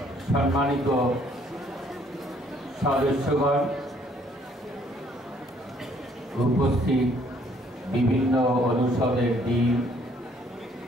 সম্মানিত সদস্যগণ, উপস্থিত বিভিন্ন অনুষদের ডিন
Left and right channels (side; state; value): both; normal; correlation 0.64